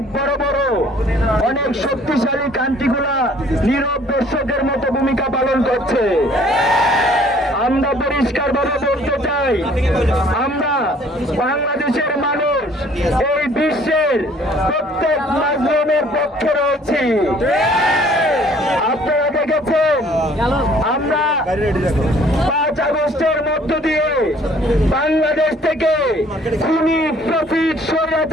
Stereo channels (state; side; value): normal; both; correlation 0.57